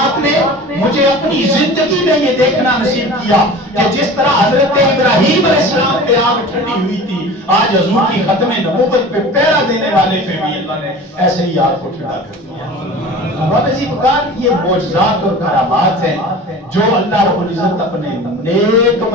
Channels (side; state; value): both; normal; correlation 0.38